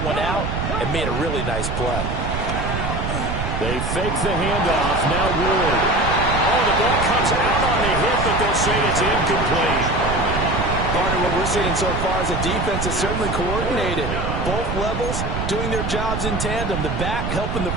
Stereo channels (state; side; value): noise; right; rumble, 3 dB below the sound